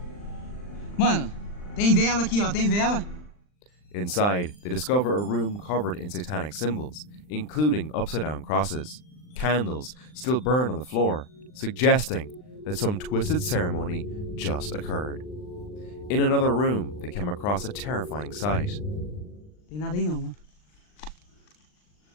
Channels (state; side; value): late; right; 39 ms